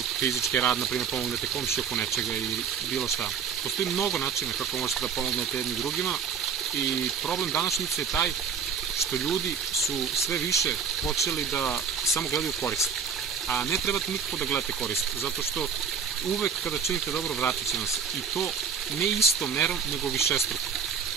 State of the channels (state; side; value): quieter; left; 6.6 dB